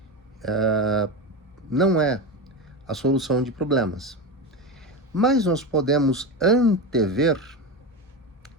não é a solução de problemas. Mas nós podemos antever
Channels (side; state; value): both; normal; correlation 0.19